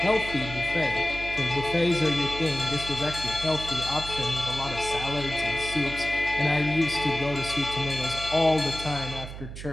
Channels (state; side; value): noise; right; hum, 10 dB below the sound